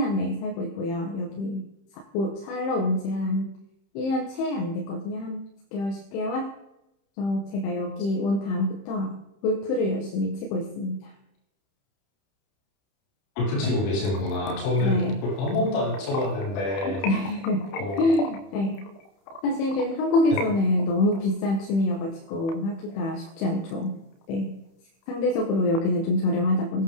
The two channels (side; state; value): right; late; 30 ms